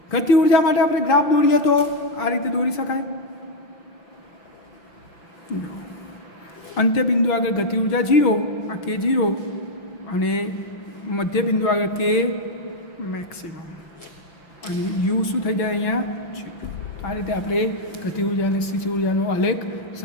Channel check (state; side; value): late; right; 5.9 ms